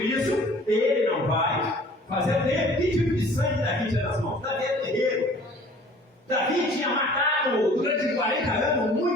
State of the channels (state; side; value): normal; both; correlation 0.50